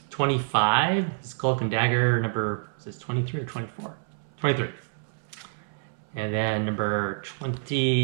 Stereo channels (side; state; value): left; silent; 60 dB below the other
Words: 25. His Cloak and Dagger number, is this 23 or 24? 23. And then number